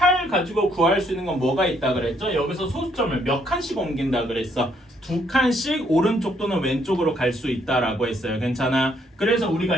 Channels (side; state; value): both; normal; correlation 0.70